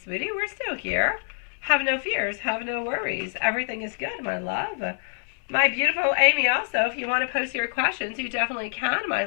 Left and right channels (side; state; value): right; silent; 61 dB below the other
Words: We're still here. Have no fears. Have no worries. Everything is good, my love. My beautiful Amy, also, if you want to post your questions, you definitely can, my